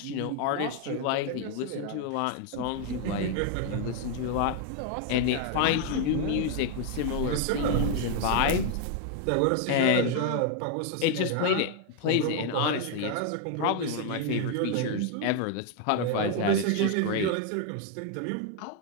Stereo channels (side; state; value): both; different; correlation 0.01